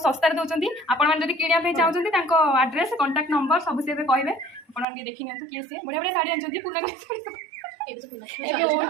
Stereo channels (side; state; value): left; drops out; at 4.9 s